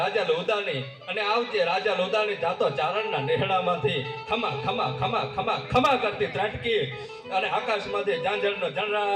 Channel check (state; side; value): identical; both; correlation 1.00